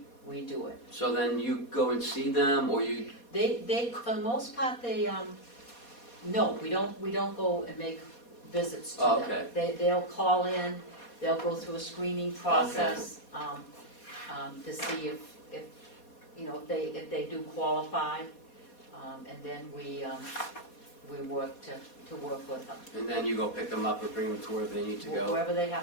do it. so then you go and see them, or you? They, for the most part, no, we don't go and make visits to Oh, them. okay. They'll call in, they'll go through a screening process, to see if they do qualify, and then we work to work with them, And then you go pick them up or bring them to where they need to go. wherever they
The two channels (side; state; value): right; late; 4.2 ms